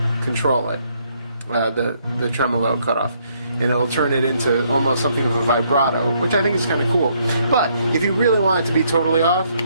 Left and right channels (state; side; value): inverted; both; correlation -0.70